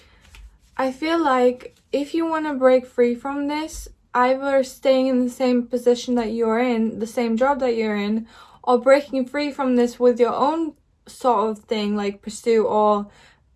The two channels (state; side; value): identical; both; correlation 1.00